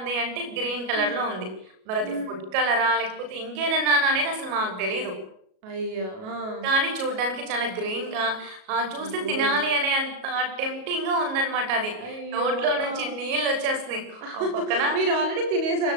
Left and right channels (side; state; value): left; late; 37 ms